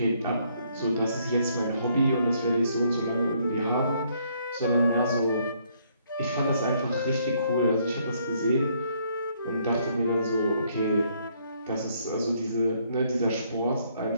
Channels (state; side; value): inverted; both; correlation -0.68